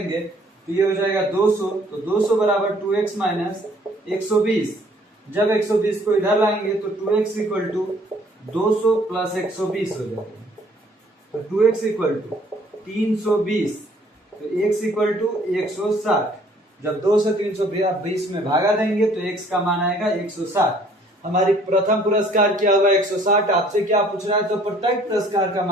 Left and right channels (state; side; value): normal; both; correlation 0.59